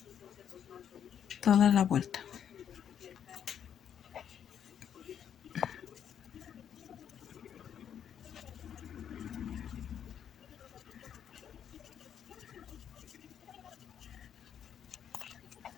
Toda la vuelta.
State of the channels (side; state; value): right; quieter; 8.8 dB